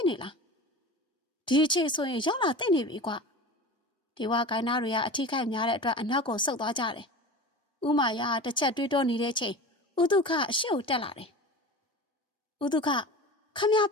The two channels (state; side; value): normal; both; correlation 0.33